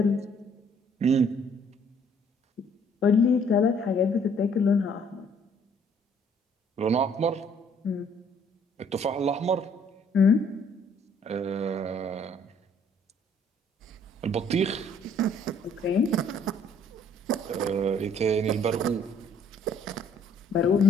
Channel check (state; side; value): normal; both; correlation 0.62